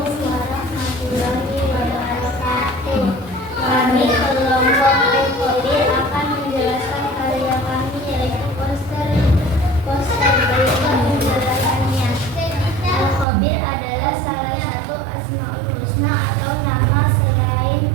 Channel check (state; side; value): drops out; left; at 13.2 s